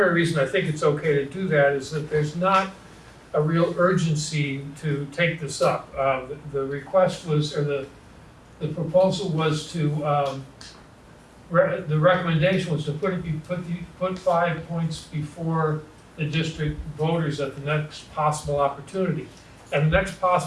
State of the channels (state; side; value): identical; both; correlation 1.00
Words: reason I think it's okay to do that, is that there's not a real urgency to take this up. The request was, or the proposal was to, the recommendation was to put 5 points before the district voters at the next possible opportunity. And the next